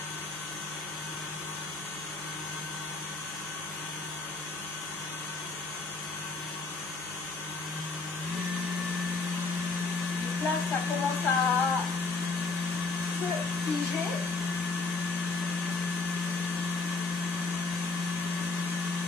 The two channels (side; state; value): right; quieter; 3.9 dB